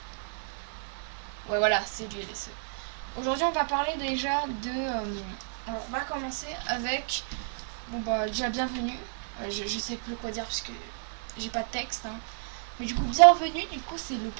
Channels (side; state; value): left; silent; digital silence